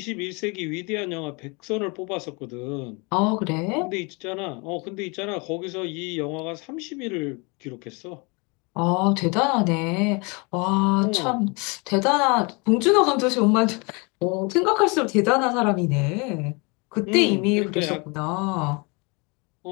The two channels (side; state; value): right; quieter; 30.0 dB